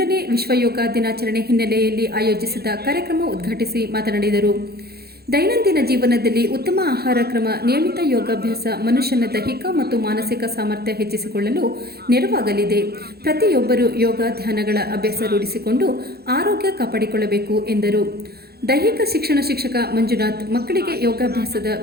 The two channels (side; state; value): left; late; 0.46 ms